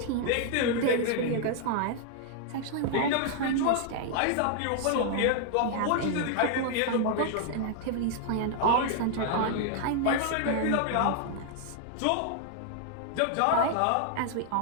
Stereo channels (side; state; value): both; different; correlation 0.00